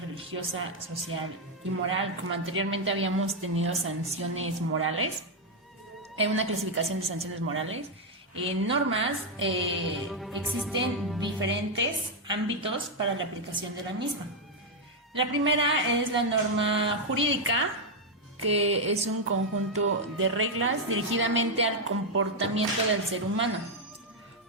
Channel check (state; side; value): normal; both; correlation 0.01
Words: religiosa, social y moral. Como anteriormente habíamos tenido sanciones morales, una clasificación de sanciones morales. En normas existen diferentes ámbitos para la aplicación de la misma. La primera es la norma jurídica, que es un conjunto de reglas dirigidamente al comportamiento del ser humano.